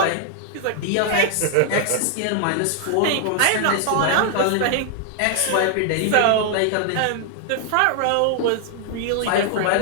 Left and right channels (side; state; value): both; different; correlation 0.00